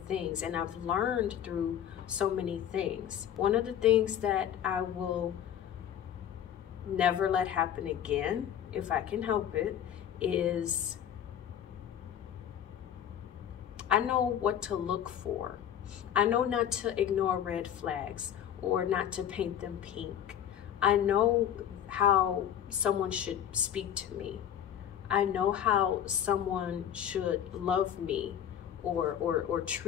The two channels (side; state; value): right; quieter; 10.0 dB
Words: things, and I've learned through so many things. One of the things that I will never let happen again, if I can help it, is I know what to look for. I know not to ignore red flags or not to paint them pink. I know how someone should speak to me. I know how someone should love me or